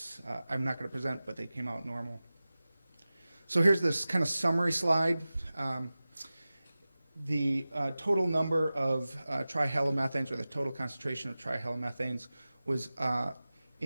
I'm not going to present, but they came out normal. So here's this kind of summary slide. The total number of trihalomethanes, or the total concentration of trihalomethanes, was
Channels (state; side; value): inverted; both; correlation -0.96